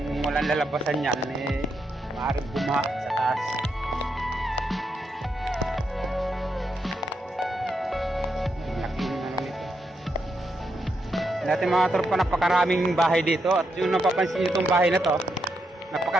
walang lalabasan yan, maaaring bumaha sa taas. Laking ano nito. Dati mga tropa, napakaraming bahay dito. At yung napapansin nyo itong bahay na to,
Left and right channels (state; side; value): normal; both; correlation 0.82